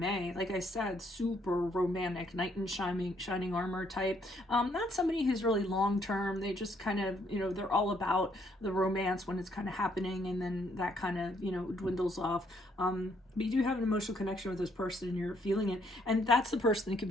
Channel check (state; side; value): normal; both; correlation 0.69